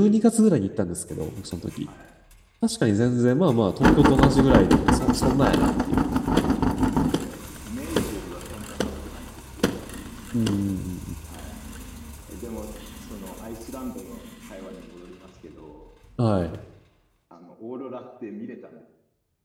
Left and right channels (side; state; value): both; identical; correlation 1.00